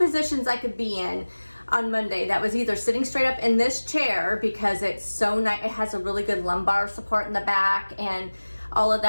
I could be in on Monday. That was either sitting straight up in this chair, because it's so nice, it has a really good lumbar support in the back and all of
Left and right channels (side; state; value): both; inverted; correlation -1.00